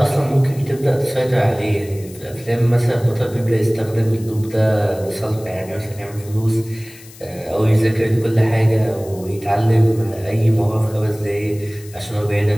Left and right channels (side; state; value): left; noise; hiss, 21 dB below the sound